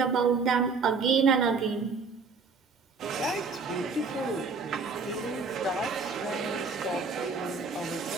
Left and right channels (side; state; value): left; quieter; 4.6 dB